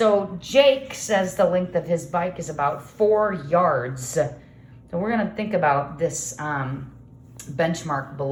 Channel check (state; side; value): identical; both; correlation 1.00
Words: Jake says the length of his bike is about 4 yards. So we're going to think about this benchmark